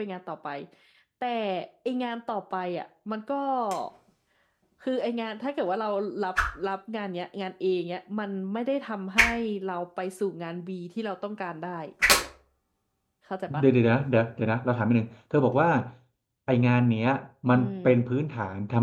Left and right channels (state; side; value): identical; both; correlation 1.00